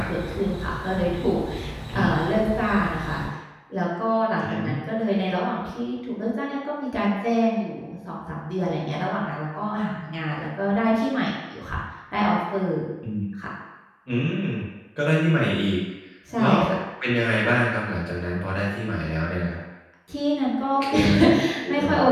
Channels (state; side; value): identical; both; correlation 1.00